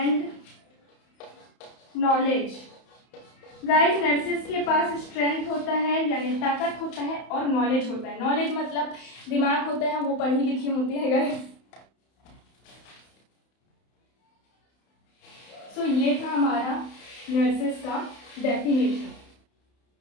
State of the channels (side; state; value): right; late; 31 ms